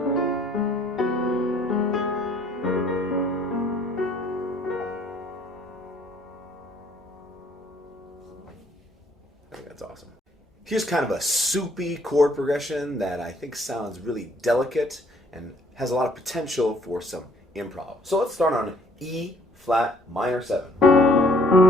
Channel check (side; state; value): both; normal; correlation 0.61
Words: think that's awesome. Here's kind of a soupy chord progression that I think sounds really delicate and has a lot of potential for some improv. So let's start on E flat minor 7.